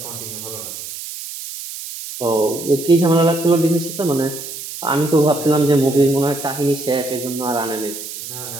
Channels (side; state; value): right; noise; hiss, 10 dB below the sound